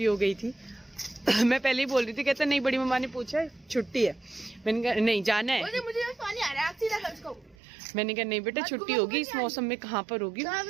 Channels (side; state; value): left; drops out; at 7.6 s